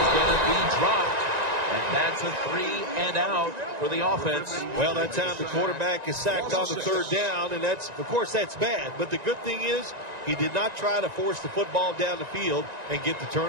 going to be dropped. And that's a 3 and out for the offense. Well, that time the quarterback is sacked on the 3rd down, and that's, of course, that's bad. But the good thing is he did not try to force the football down the field and get the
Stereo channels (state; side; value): late; left; 1.9 ms